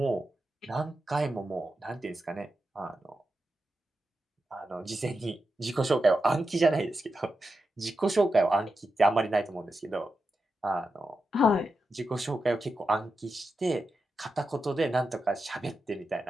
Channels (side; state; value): both; normal; correlation 0.89